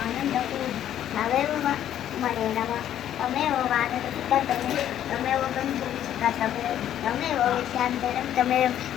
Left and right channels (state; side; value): quieter; right; 11.0 dB